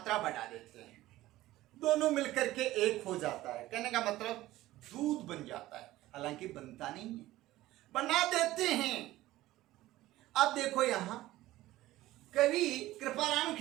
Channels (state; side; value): quieter; left; 16.3 dB